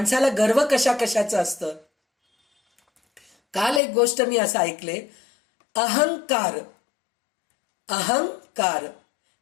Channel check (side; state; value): right; drops out; at 3.8 s